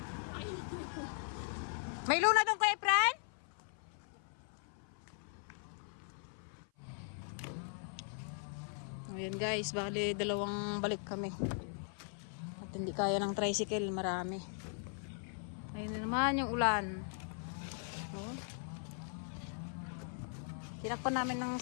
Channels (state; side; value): silent; right; 52 dB below the other